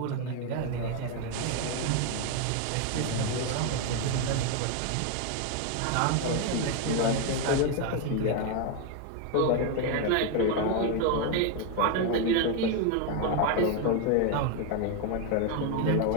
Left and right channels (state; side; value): different; both; correlation 0.01